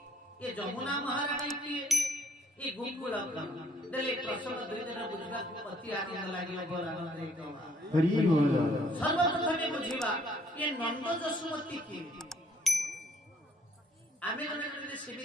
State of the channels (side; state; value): both; normal; correlation 0.61